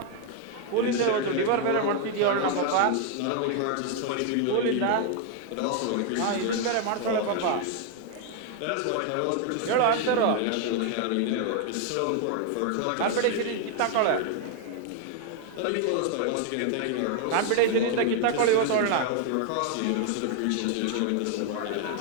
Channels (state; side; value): different; both; correlation 0.00